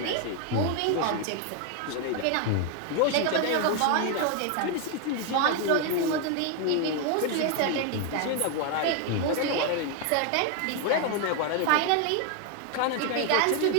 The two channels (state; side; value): different; both; correlation 0.01